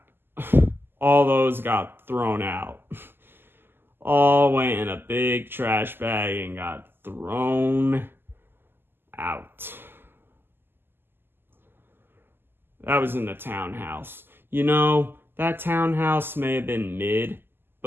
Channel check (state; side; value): late; left; 0.10 ms